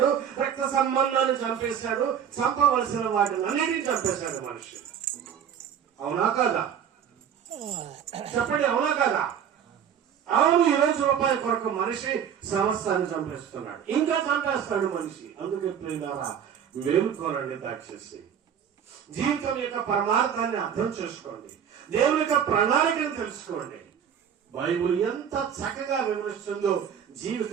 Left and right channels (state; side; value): quieter; left; 8.5 dB